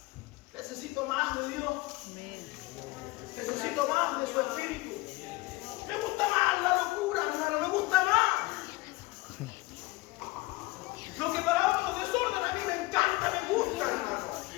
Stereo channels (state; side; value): quieter; right; 21.6 dB